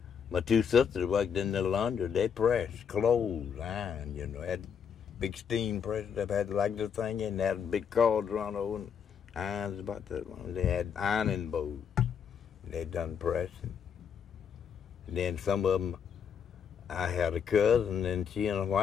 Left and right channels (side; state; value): right; quieter; 7.4 dB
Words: my 2 sisters worked in the laundry. They pressed clothes, iron, had big steam press that had like the thing in. They had big cars run over and irons about that long. They had ironing boards. They done pressing. And then some of them, I had a cousin, and she and a